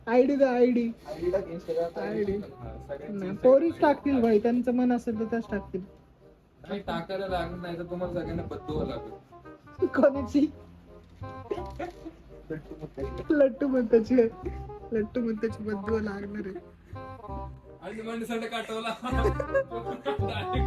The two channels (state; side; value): identical; both; correlation 1.00